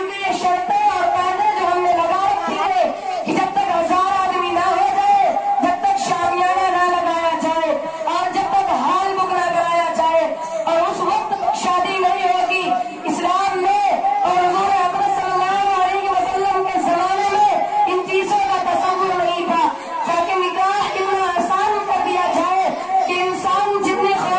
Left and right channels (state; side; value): identical; both; correlation 1.00